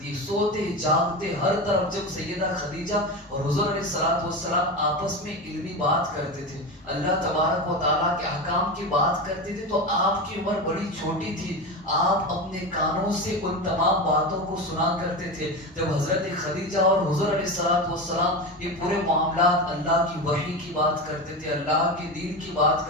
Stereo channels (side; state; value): both; normal; correlation 0.21